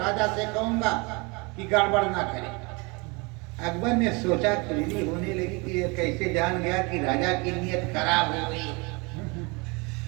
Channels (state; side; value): quieter; left; 28.4 dB